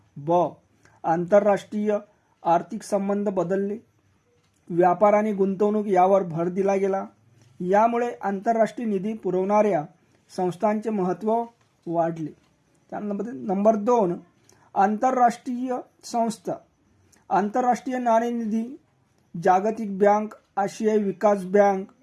आंतरराष्ट्रीय आर्थिक संबंध बदलले, व्यापार आणि गुंतवणूक यावर भर दिला गेला। यामुळे आंतरराष्ट्रीय निधी पुरवणाऱ्या संस्थांचे महत्त्व वाढले। त्यानंतर नंबर 2, आंतरराष्ट्रीय संस्था। आंतरराष्ट्रीय नाणेनिधी, जागतिक बँक, आशियाई विकास बँक,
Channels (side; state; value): both; identical; correlation 1.00